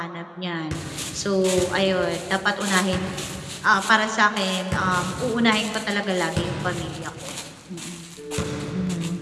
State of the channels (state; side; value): identical; both; correlation 1.00